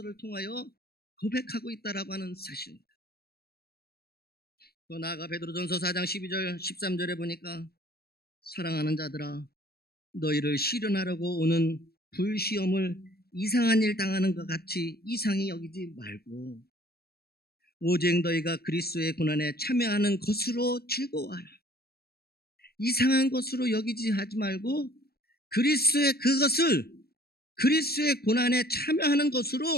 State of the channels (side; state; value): right; late; 0.46 ms